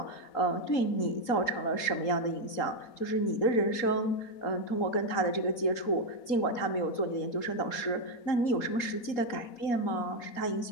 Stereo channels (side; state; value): right; late; 3.8 ms